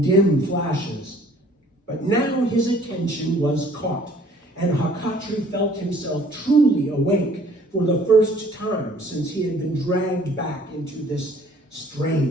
dim flashes. But now his attention was caught, and Hakatri felt himself truly awake for the first time since he had been dragged back into this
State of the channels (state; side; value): normal; both; correlation 0.56